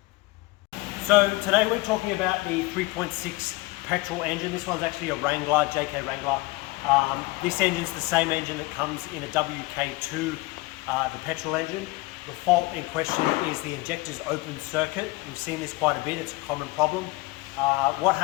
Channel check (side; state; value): right; quieter; 21.8 dB